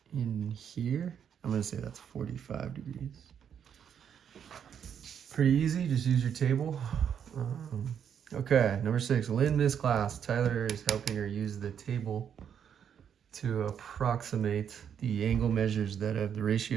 in here. I'm going to say that's 45 degrees. Pretty easy. Just use your table. Okay, number 6. Lynn missed class. Tyler is helping her use the table to approximate the angle measures that have the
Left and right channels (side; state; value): left; quieter; 8.3 dB